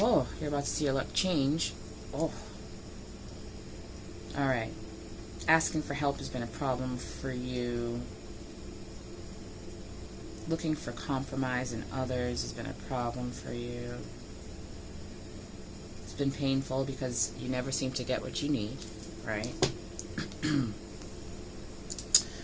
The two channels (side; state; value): both; identical; correlation 1.00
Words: about to see your luck change. Oh. Alright. Asking for help has been a problem for you. Looking for compromise in others has been a problem for you. It's been painful because you never seem to get what you need, right?